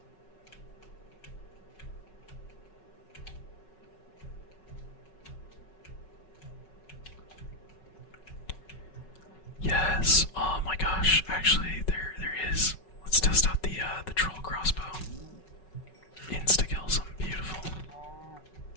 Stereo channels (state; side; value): late; right; 5.4 ms